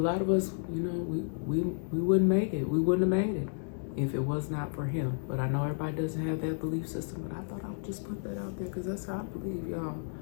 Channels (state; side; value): silent; right; digital silence